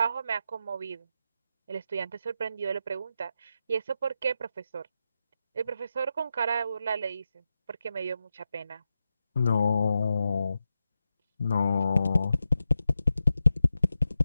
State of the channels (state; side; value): inverted; both; correlation -0.89